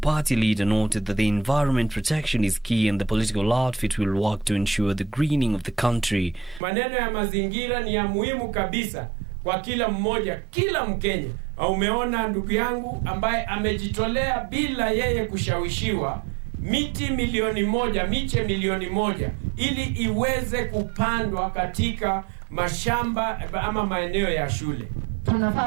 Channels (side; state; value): left; drops out; at 6.6 s